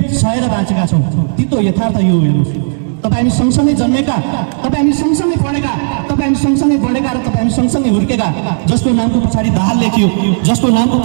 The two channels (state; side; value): silent; left; digital silence